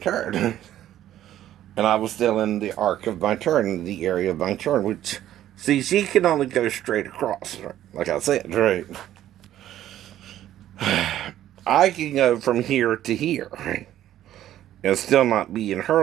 turn. And I was still in the arc of my turn, in the area of my turn, which, see, she can only go straight across, right? Like I said, right? I can go from here to here, right? And still not be in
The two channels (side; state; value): left; quieter; 12.4 dB